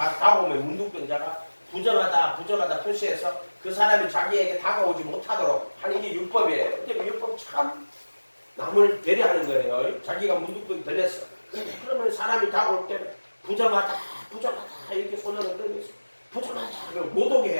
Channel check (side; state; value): both; inverted; correlation -1.00